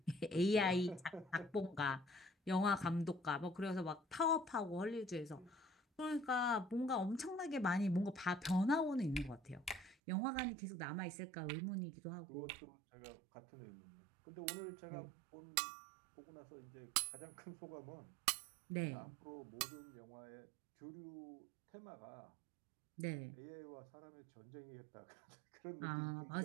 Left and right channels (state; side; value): drops out; left; at 10.0 s